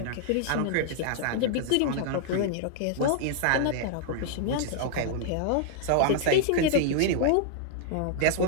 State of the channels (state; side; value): different; both; correlation -0.01